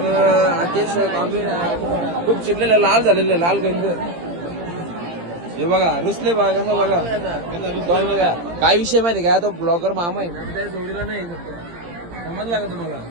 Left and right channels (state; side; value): late; left; 17 ms